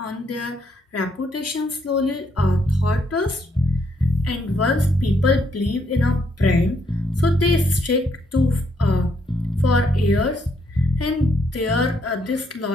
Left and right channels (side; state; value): both; normal; correlation 0.74